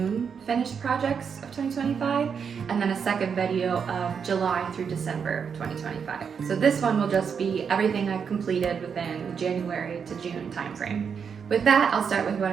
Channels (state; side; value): quieter; left; 6.6 dB